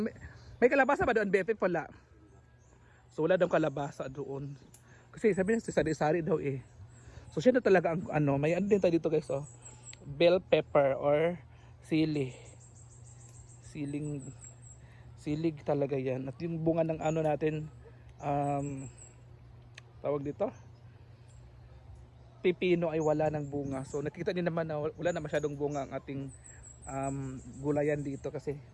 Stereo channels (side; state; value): both; identical; correlation 1.00